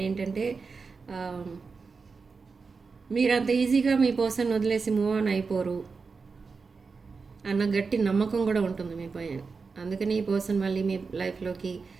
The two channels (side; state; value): left; quieter; 4.7 dB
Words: ఏంటంటే మీరు అంత ఈజీగా మీ పర్సన్ వదిలేసి మూవ్ ఆన్ అయిపోరు అన్న గట్టి నమ్మకం కూడా ఉంటుంది మీ పైన. అందుకని ఈ పర్సన్ మళ్ళీ మీ లైఫ్లోకి